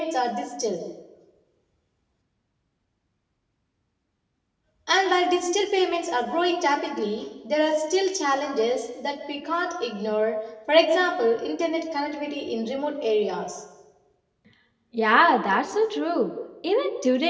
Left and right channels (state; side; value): identical; both; correlation 1.00